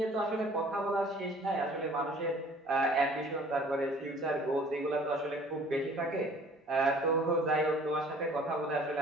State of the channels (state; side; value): normal; both; correlation 0.52